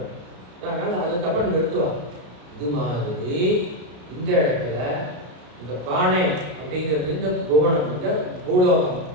அதனால் அதுக்கப்புறம் நிறுத்துவாங்க. இது மாதிரி இந்த இடத்துல இந்த பானை அப்படிங்கிறது இந்த புவனம், இந்த பூலோகம்,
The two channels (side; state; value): left; late; 33 ms